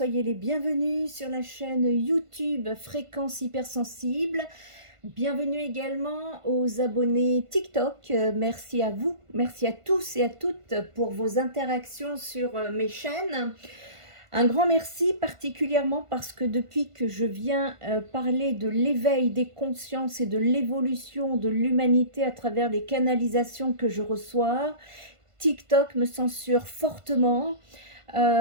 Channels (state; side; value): late; left; 1.5 ms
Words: les bienvenus sur la chaîne YouTube Fréquence Hypersensible. Bienvenue également aux abonnés TikTok. Merci à vous, merci à tous et à toutes pour vos interactions sur mes chaînes. Un grand merci particulièrement parce que depuis que je viens parler de l'éveil des consciences et de l'évolution de l'humanité à travers les canalisations que je reçois, TikTok me censure fortement.